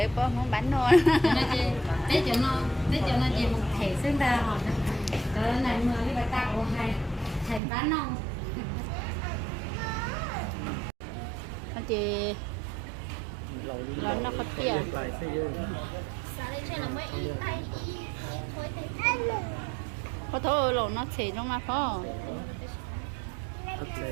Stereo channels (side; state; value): left; drops out; at 7.6 s